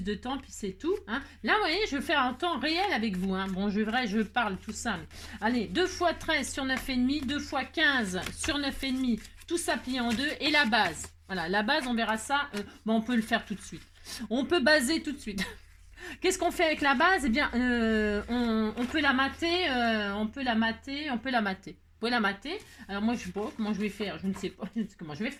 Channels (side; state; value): both; identical; correlation 1.00